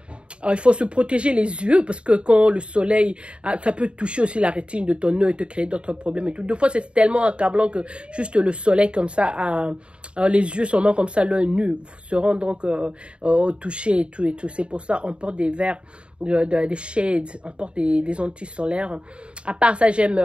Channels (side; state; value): left; late; 0.056 ms